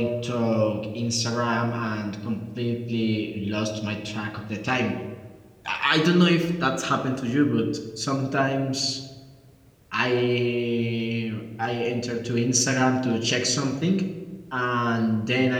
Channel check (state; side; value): identical; both; correlation 1.00